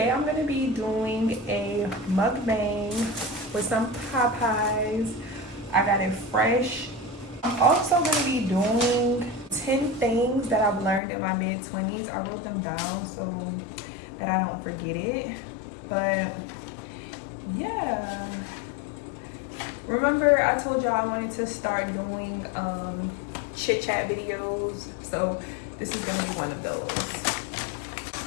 I'm gonna be doing a mukbang with some Popeyes. I got it fresh. I'm also gonna be doing 10 things that I've learned in my mid-20s. I wrote them down so that I don't forget it. But yeah. Remember I told y'all I wanted to start doing chit chat videos. So this is gonna be one of those.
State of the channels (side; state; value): right; drops out; at 11.0 s